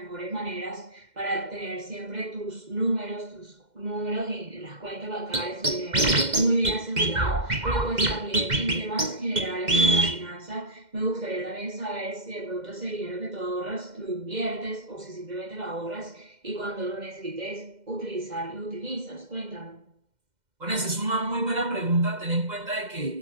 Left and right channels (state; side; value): late; left; 2.1 ms